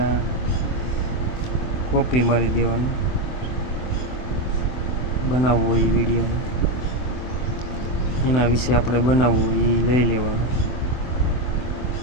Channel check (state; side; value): late; right; 24 ms